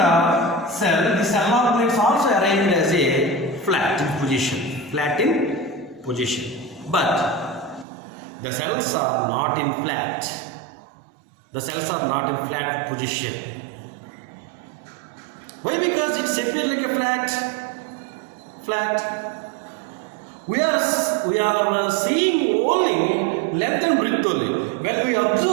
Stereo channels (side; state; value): left; drops out; at 7.9 s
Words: the cell organelles also arranged as a flat in position. But the cells are not in flat. Position. Why? Because it's appear like a flat. We are seeing only length and breadth only. When we